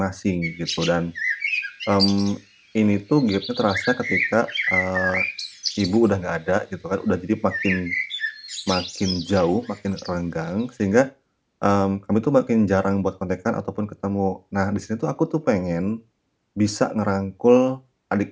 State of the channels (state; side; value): identical; both; correlation 1.00